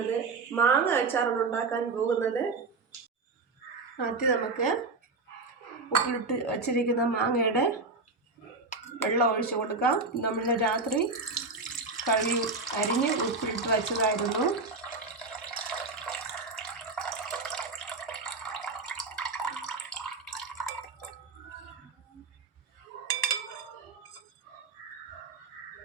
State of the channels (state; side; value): quieter; left; 3.8 dB